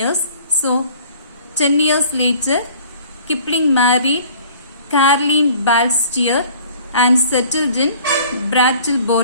So 10 years later, Kipling married Caroline Balstier and settled in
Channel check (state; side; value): inverted; both; correlation -0.51